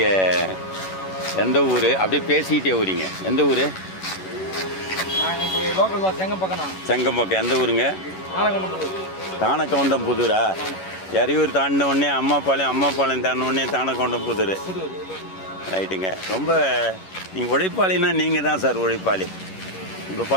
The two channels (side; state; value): right; late; 11 ms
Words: எந்த ஊர்? அப்படியே பேசிக்கிட்டே ஊரிங்க. எந்த ஊர்? செங்கம்பக்கம். எந்த ஊருங்க? தானக்கவுண்டம் புதூரா? எறையூர் தாண்டின உடனே அம்மாபாளையம் தாண்டின உடனே தானக்கவுண்டம் புதூர். ரைட்டுங்க. ரொம்ப நீங்கள் உழைப்பாளின்னா நீங்கள் தான் சார் உழைப்பாளி. இப்போ